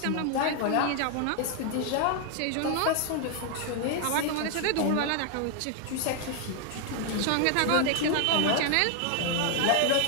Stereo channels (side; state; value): both; different; correlation 0.00